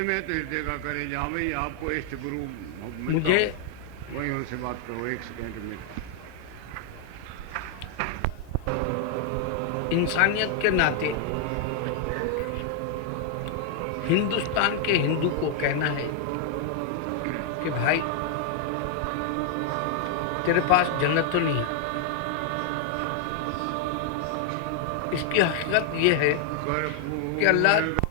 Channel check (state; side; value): different; both; correlation 0.00